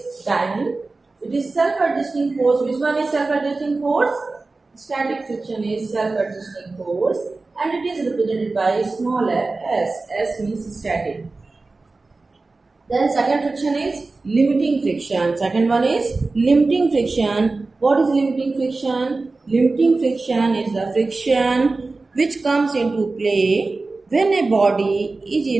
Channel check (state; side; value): quieter; left; 3.6 dB